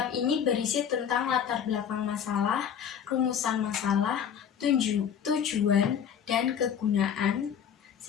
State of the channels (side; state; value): right; quieter; 8.2 dB